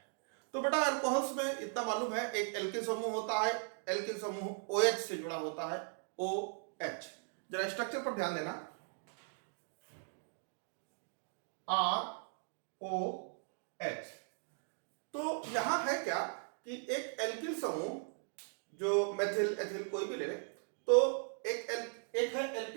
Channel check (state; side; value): silent; left; 52 dB below the other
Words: तो बेटा एल्कोहल्स में इतना मालूम है, एक एल्किल समूह होता है। एल्किल समूह OH से जुड़ा होता है, OH। जरा स्ट्रक्चर पर ध्यान देना, ROH। तो यहां है क्या कि एक एल्किल समूह, जो मेथिल एथिल कोई भी ले ले, तो एक है